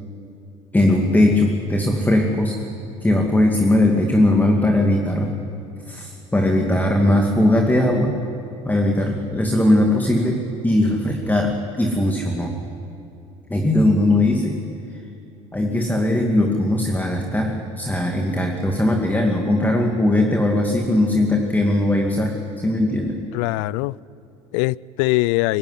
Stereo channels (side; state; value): both; normal; correlation 0.75